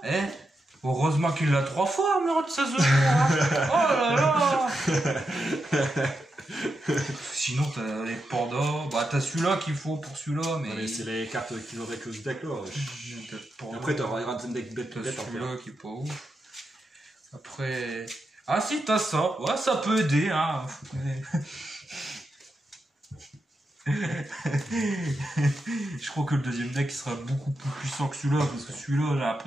heureusement qu'il l'a 3 fois, armure de 16 jours. Hein. Oh là là. Sinon, t'as les pandas. Bah, t'as celui-là qu'il faut pour celui-là, mais... Ouais, mais c'est les cartes qui vont avec le deck là. T'as le panda. Après t'auras un deuxième deck bête T'as bête après. celui-là qui est pas ouf. Après... Ah si, t'as ça. Ouais, ça peut aider, hein. Je crois que le deuxième deck sera beaucoup plus puissant que celui-là, parce que celui-là, j'ai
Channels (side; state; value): both; normal; correlation 0.86